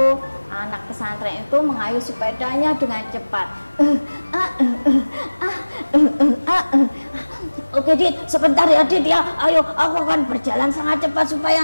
anak pesantren itu mengayuh sepedanya dengan cepat. Oke Dit, sebentar ya Dit ya. Ayo, aku akan berjalan sangat cepat supaya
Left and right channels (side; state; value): both; inverted; correlation -1.00